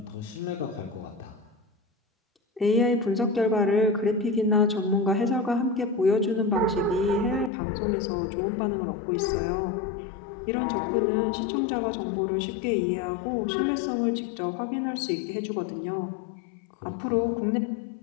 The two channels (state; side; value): drops out; right; at 7.5 s